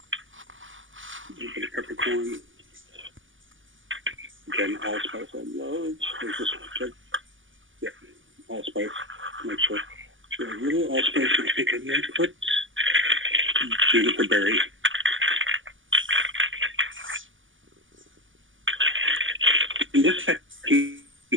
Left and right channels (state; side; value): late; left; 0.57 ms